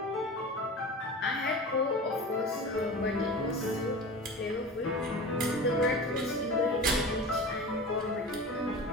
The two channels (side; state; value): both; normal; correlation 0.33